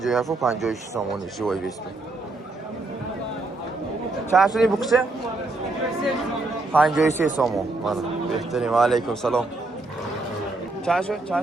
و 56 سامانی جوایی بیسته چند شدی بکشه؟ 53 سامون بهترین علیکم سلام چند شد؟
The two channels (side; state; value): left; quieter; 3.2 dB